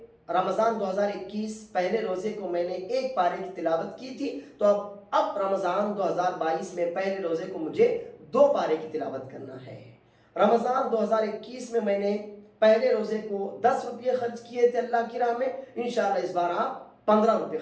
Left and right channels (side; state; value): both; identical; correlation 1.00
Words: रमज़ान 2021 पहले रोज़े को मैंने 1 पारे की तिलावत की थी, तो अब रमज़ान 2022 में पहले रोज़े को मुझे 2 पारे की तिलावत करना है। रमज़ान 2021 में मैंने पहले रोज़े को 10 रुपये खर्च किए थे अल्लाह की राह में, इंशाअल्लाह इस बार आप 15 रुपये